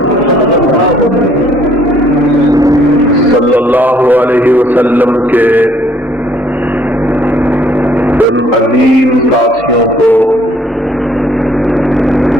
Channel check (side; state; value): both; normal; correlation 0.63